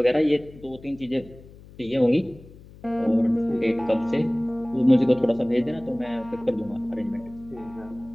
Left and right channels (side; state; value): left; noise; hum, 21 dB below the sound